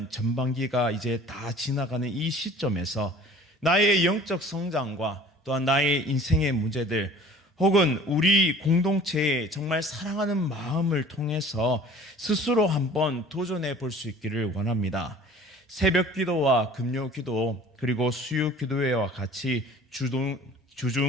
전반기가 이제 다 지나가는 이 시점에서 나의 영적 성장과 또한 나의 인생의 문제들 혹은 우리 공동체의 정말 사랑하는 마음을 통해서 스스로 한번 도전해 볼 수 있기를 원합니다. 새벽 기도와 금요 기도 그리고 수요 기도회와 같이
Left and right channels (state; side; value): normal; both; correlation 0.47